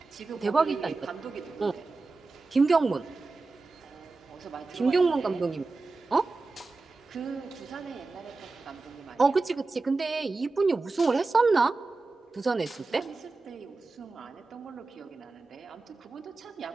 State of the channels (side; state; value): left; quieter; 3.7 dB